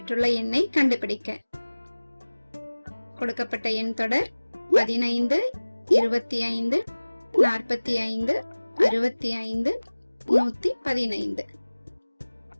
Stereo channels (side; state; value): both; inverted; correlation -1.00